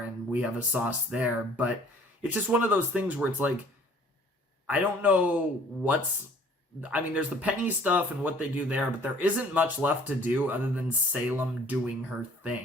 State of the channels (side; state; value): both; normal; correlation 0.54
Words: and we have a sauce there. But it's just one of those things where it's like, I don't know there's the Penny stuff and what they do there, but there isn't much left to do other than Salem doing her